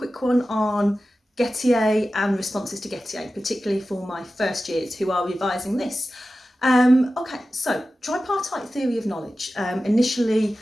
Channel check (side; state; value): both; normal; correlation 0.94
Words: one on Gettier and responses to Gettier, particularly for my first years who are revising this. Okay, so tripartite theory of knowledge, initially